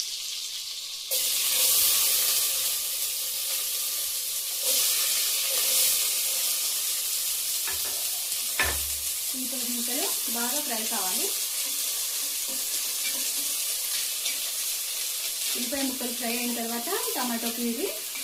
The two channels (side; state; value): both; identical; correlation 1.00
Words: ఉల్లిపాయ ముక్కలు బాగా ఫ్రై కావాలి. ఉల్లిపాయ ముక్కలు ఫ్రై అయిన తర్వాత టమాటో ప్యూరీ